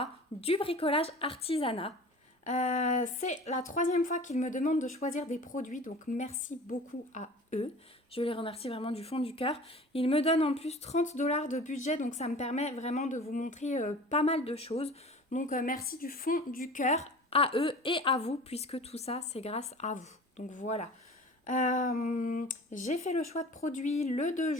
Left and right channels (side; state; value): both; normal; correlation 0.41